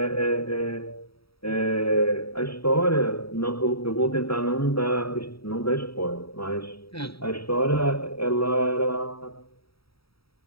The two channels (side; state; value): right; late; 0.76 ms